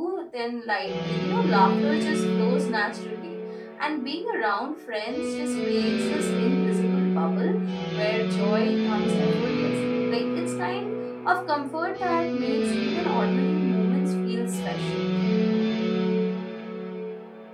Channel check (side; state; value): both; identical; correlation 1.00